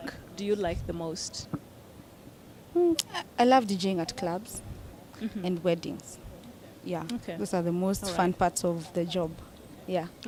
do you like the most? I love DJing at clubs and weddings. Yeah. Okay. Those are the most All fun right. parts of the job. Yeah.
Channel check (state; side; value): identical; both; correlation 1.00